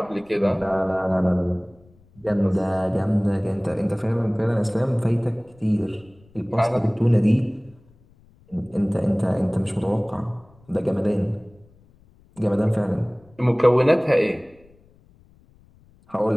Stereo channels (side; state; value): left; noise; rumble, 29 dB below the sound